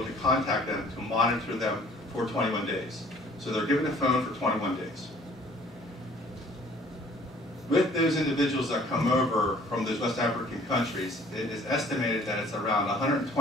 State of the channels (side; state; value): both; normal; correlation 0.54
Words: to contact them to monitor them for 21 days. So they're given a phone for 21 days. With those individuals that come over from those West African countries, it is estimated that it's around